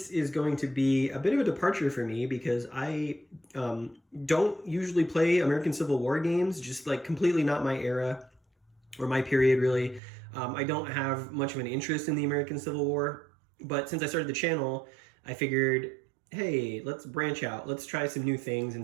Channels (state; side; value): drops out; left; at 10.0 s